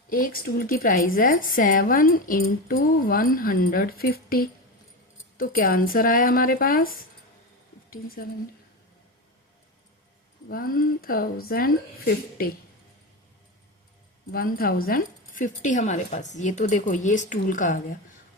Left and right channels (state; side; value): normal; both; correlation 0.19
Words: एक स्टूल की प्राइस है 7 इंटू 150। तो क्या आंसर आया हमारे पास? 1050 1050 हमारे पास। ये तो देखो, ये स्टूल का आ गया।